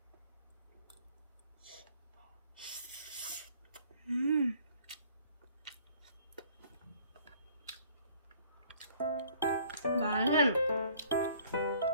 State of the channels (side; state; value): both; inverted; correlation -0.57